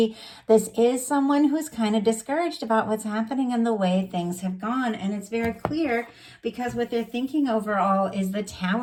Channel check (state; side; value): identical; both; correlation 1.00